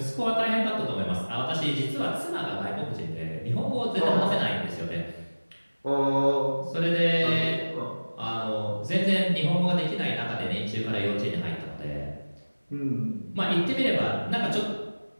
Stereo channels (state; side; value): inverted; both; correlation -1.00